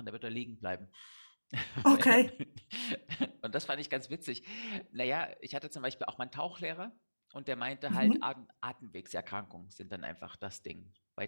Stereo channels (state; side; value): inverted; both; correlation -1.00